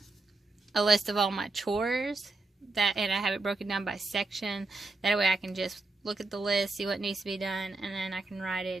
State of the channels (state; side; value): quieter; left; 3.3 dB